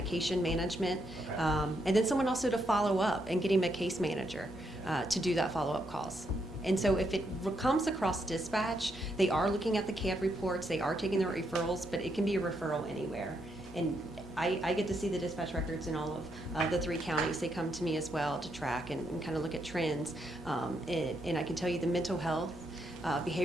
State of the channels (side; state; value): both; normal; correlation 0.78